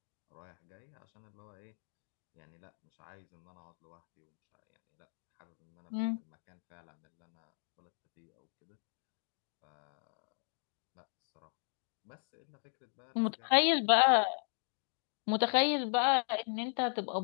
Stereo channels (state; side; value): silent; right; digital silence